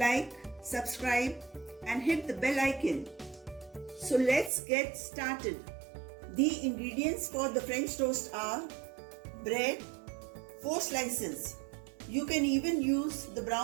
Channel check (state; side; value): drops out; left; at 4.5 s